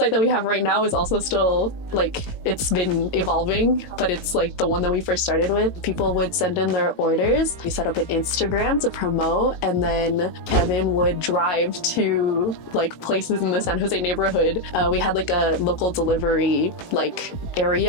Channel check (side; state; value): right; late; 18 ms